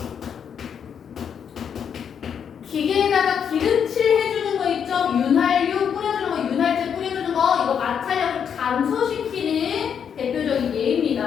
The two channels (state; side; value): quieter; right; 7.7 dB